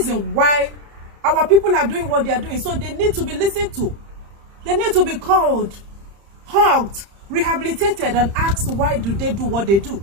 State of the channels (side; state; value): left; late; 30 ms